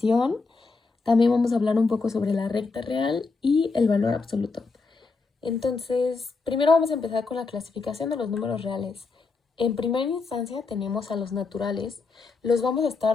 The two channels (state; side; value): quieter; right; 4.2 dB